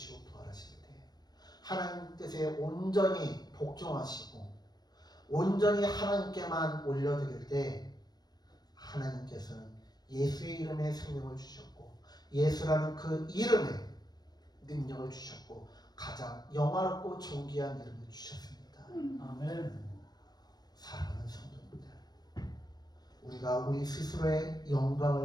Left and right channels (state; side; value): late; right; 0.19 ms